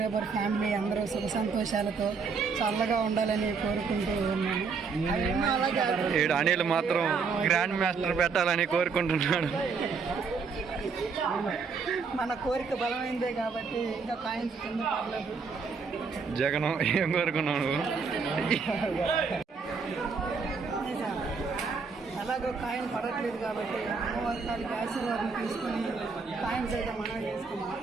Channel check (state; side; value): quieter; left; 5.1 dB